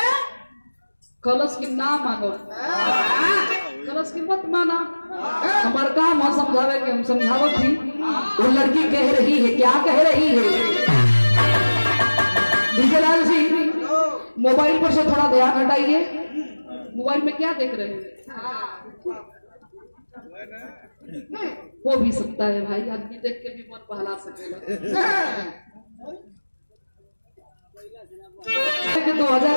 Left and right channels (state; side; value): inverted; both; correlation -1.00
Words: कलश की ना मानो, कलश की मत माना। हमारा काम है समझावे के, हम समझावत थी। वो लड़की कह रही है, क्या कह रही है? विजयलाल जी मोबाइल पर से थोड़ा ध्यान हटाइए। मोबाइल में क्या देख रहे हैं? वो भी सकता है भाई, आदमी देख के भी मन बहला सकेगा।